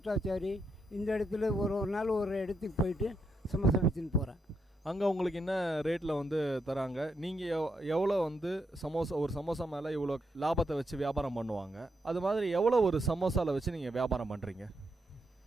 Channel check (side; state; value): both; normal; correlation 0.80